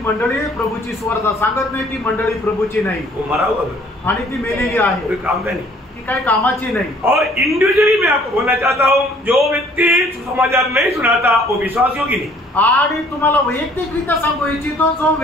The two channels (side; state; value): both; normal; correlation 0.58